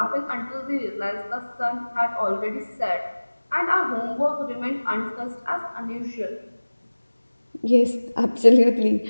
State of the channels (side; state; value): both; inverted; correlation -1.00